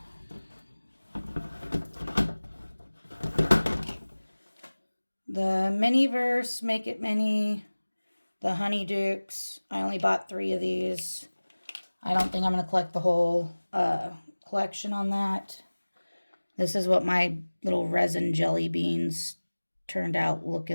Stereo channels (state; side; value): inverted; both; correlation -1.00